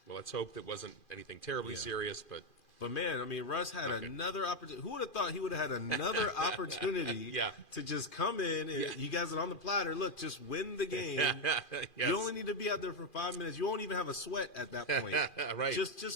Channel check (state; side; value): late; right; 2.4 ms